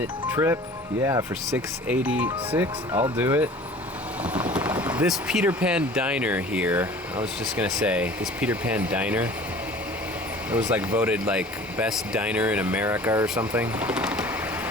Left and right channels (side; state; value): both; normal; correlation 0.45